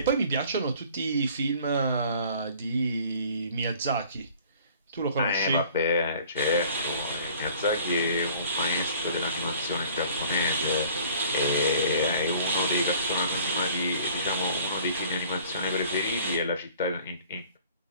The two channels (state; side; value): inverted; both; correlation -0.52